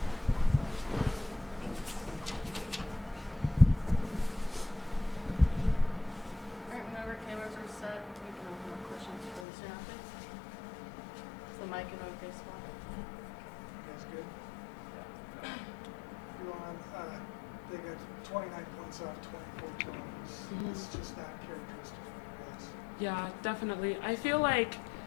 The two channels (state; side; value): drops out; right; at 9.5 s